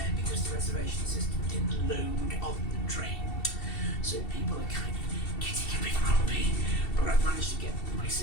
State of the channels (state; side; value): late; right; 2.7 ms